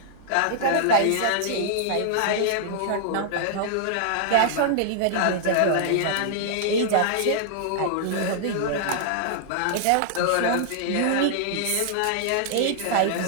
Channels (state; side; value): different; both; correlation -0.01